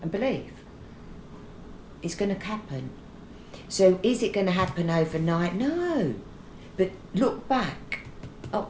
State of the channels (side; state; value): both; identical; correlation 1.00